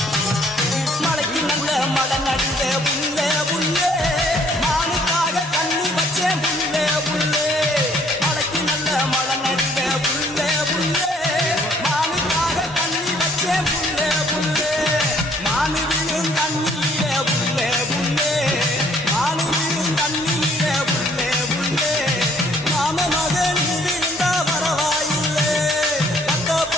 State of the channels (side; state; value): both; normal; correlation 0.63